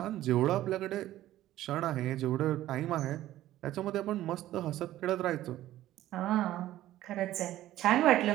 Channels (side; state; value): left; quieter; 14.2 dB